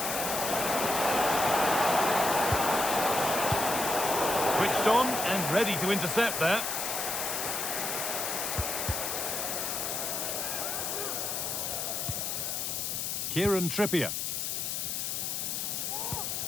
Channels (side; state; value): left; noise; hiss, 1 dB below the sound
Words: Switched on and ready to intercept that. Kieran Trippier.